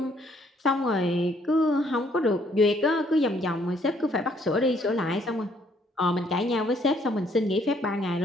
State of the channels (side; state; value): both; normal; correlation 0.66